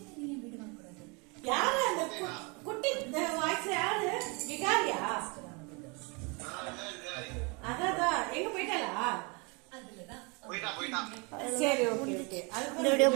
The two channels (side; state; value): left; quieter; 30.5 dB